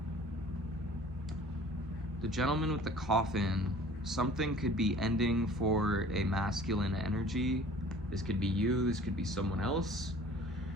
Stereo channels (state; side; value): normal; both; correlation 0.48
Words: the Gentleman with the Coffin, something could be ending for a masculine energy. This could be you, this could be someone else.